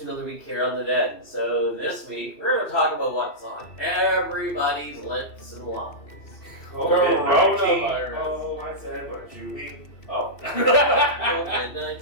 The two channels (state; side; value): late; right; 2.7 ms